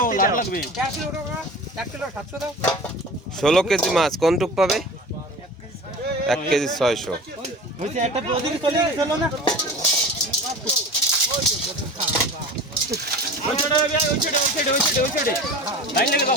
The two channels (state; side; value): normal; both; correlation 0.36